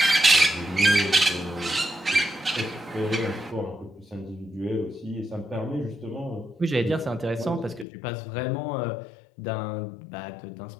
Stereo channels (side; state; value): right; drops out; at 7.9 s